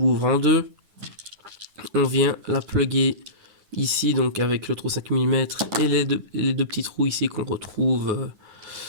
en deux. On vient la plugger ici, donc avec le trou 5 mm et les deux petits trous ici qu'on retrouve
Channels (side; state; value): left; late; 9.8 ms